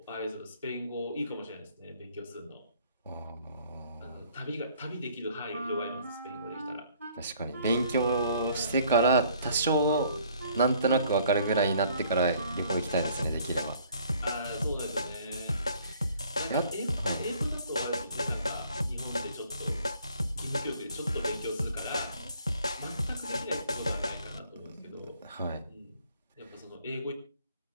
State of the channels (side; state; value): both; inverted; correlation -0.59